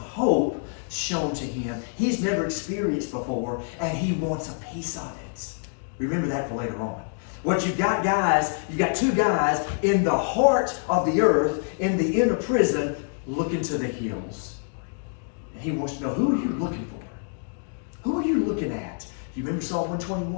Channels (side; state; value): right; silent; 61 dB below the other